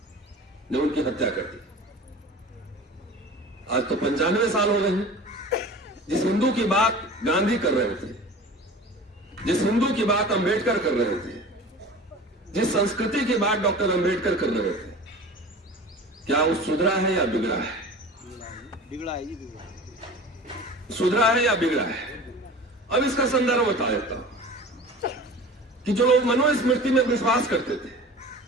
ने उनकी हत्या कर दी। आज तो 95 साल हो गए हैं। जिस हिंदू की बात गांधी कर रहे थे, जिस हिंदू की बात अंबेडकर कर रहे थे, जिस संस्कृति की बात डॉक्टर अंबेडकर कर रहे थे, क्या वो सुधरा है या बिगड़ा है? बिगड़ा है जी, बिगड़ा है। सुधरा है या बिगड़ा है? अब इसका संदर्भ बता देता हूं कि जो लोग मनुस्मृति में विश्वास करते थे,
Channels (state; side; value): normal; both; correlation 0.38